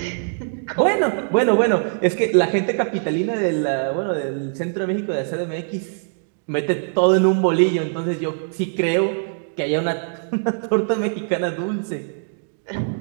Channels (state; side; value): silent; left; digital silence